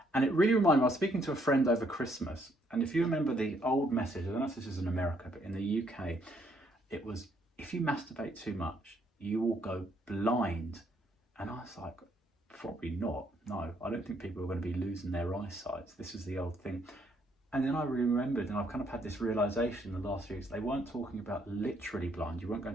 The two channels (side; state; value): both; normal; correlation 0.70